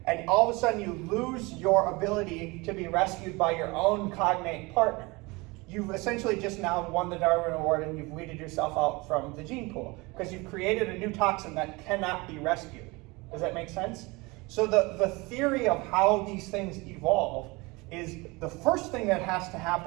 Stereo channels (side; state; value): left; quieter; 24.7 dB